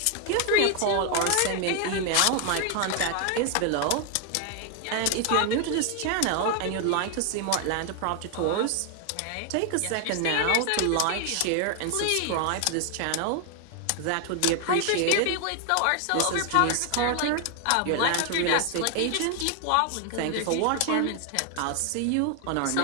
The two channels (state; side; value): different; both; correlation 0.00